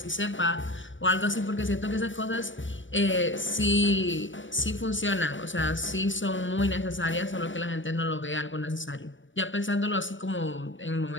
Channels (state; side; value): late; right; 0.56 ms